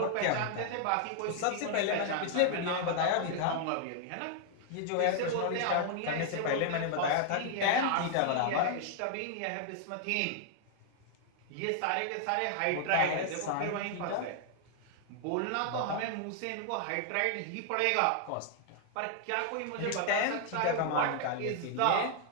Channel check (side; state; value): both; different; correlation 0.00